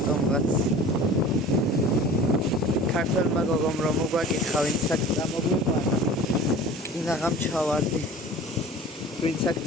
ქართველმა გოგომ რომ მოგვაკითხა ვინც აქ წამოგვიყვანა კინაღამ ჩავარდი ვინც აქ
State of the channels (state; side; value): normal; both; correlation 0.42